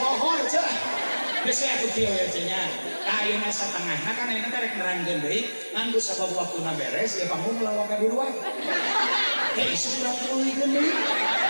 cah geus atuh kieu ya cenah ayeuna satengahna kan ayeuna teh rek nerangkeun deui ngan geus sabab waktuna beres ya panggung lawak di luar hei sudah tulikeun deui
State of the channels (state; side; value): inverted; both; correlation -1.00